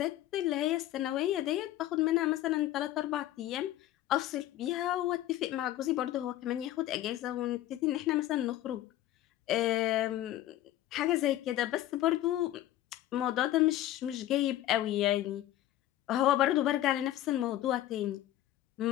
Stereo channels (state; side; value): quieter; right; 13.9 dB